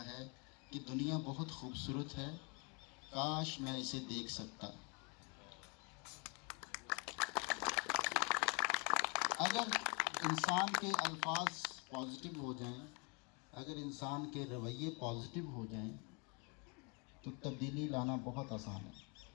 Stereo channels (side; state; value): right; quieter; 33.1 dB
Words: ہے کہ دنیا بہت خوبصورت ہے, کاش میں اسے دیکھ سکتا. اگر انسان کے الفاظ پازیٹیو ہو جائیں, اگر انسان کے رویے پازیٹیو ہو جائیں تو تبدیلی لانا بہت آسان ہے.